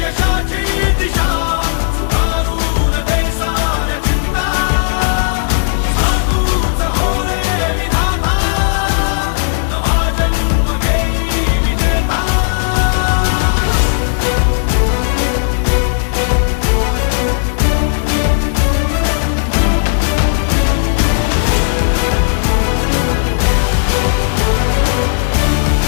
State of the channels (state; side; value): silent; right; digital silence